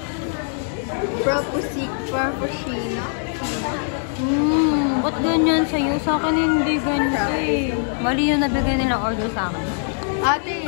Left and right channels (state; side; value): silent; right; 64 dB below the other